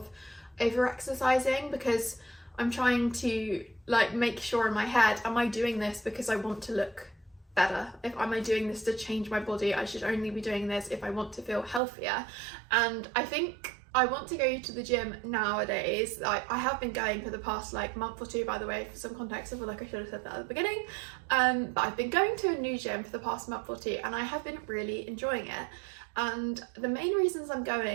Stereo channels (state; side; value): drops out; left; at 11.8 s